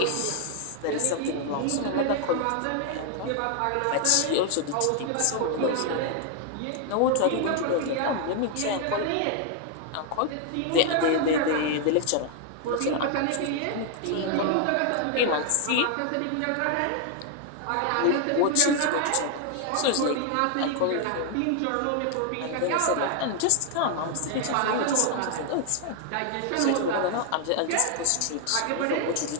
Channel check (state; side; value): different; both; correlation 0.00